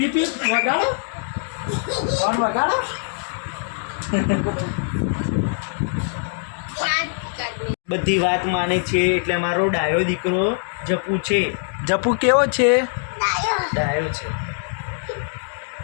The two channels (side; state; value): right; silent; digital silence